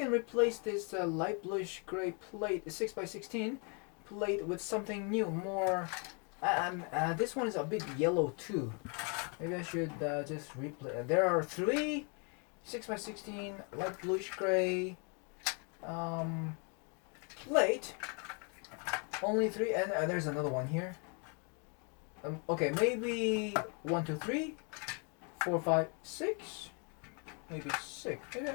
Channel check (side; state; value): right; quieter; 36.7 dB